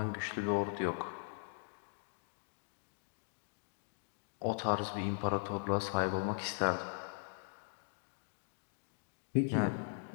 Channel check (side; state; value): right; silent; digital silence